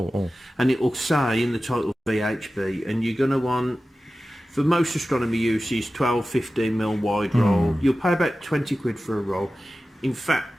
And it will say in the title VHB, and you're going to want, for most astronomy uses, 12-15mm wide roll. You'll pay about 20 quid for a roll. In fact,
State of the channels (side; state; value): both; normal; correlation 0.95